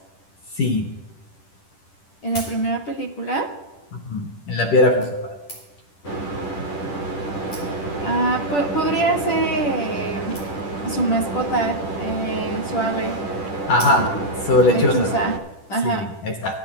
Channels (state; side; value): late; right; 10 ms